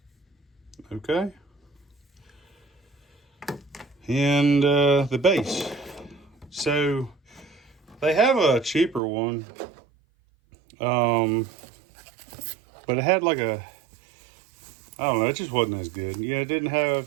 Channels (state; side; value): drops out; left; at 9.0 s